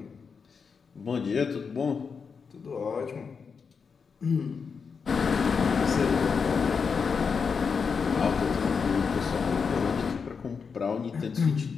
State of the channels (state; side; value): quieter; right; 5.7 dB